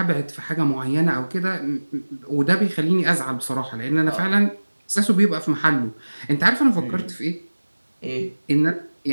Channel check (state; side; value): inverted; both; correlation -1.00